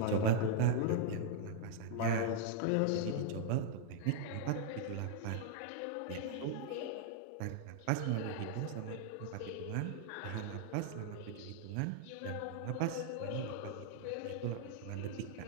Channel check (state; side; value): different; both; correlation -0.01